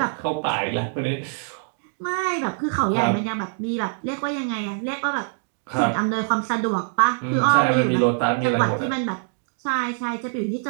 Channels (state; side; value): silent; left; digital silence